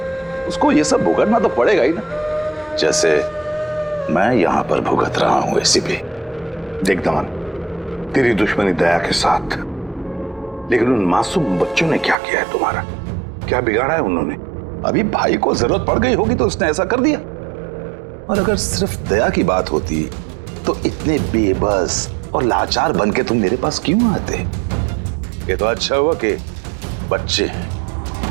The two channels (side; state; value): left; drops out; at 12.2 s